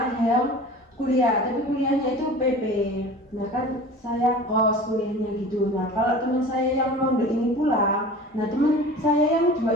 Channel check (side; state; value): both; normal; correlation 0.39